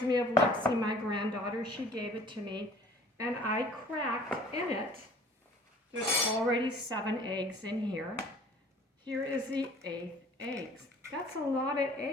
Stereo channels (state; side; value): normal; both; correlation 0.51